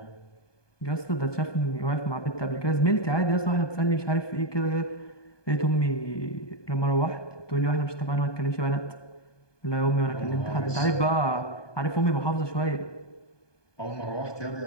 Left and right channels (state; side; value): late; right; 1.2 ms